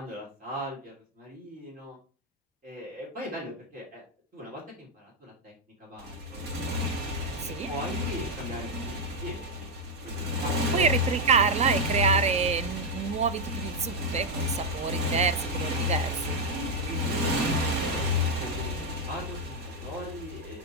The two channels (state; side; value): normal; both; correlation 0.00